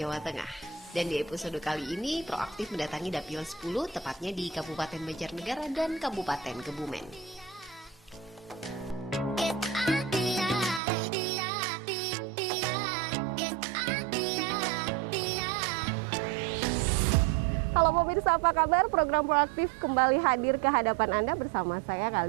Tengah. Dan di episode kali ini, Proaktif mendatangi Dapil 10, tepatnya di Kabupaten Banjarnegara dan Kabupaten Kebumen. Halo pemirsa, apa kabar? Program Proaktif kembali hadir ke hadapan Anda bersama saya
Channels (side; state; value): left; drops out; at 10.8 s